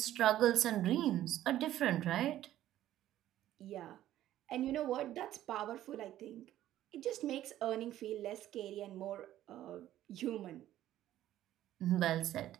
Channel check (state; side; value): quieter; left; 13.1 dB